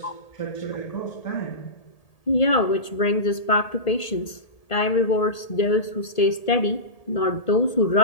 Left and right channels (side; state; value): right; late; 1.8 ms